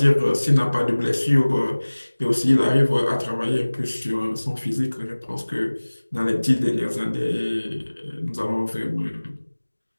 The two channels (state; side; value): inverted; both; correlation -1.00